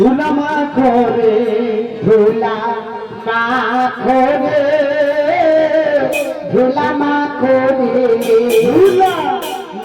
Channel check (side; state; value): both; identical; correlation 1.00